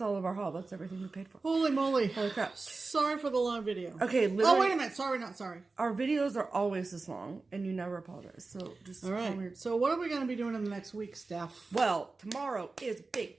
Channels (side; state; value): left; quieter; 3.8 dB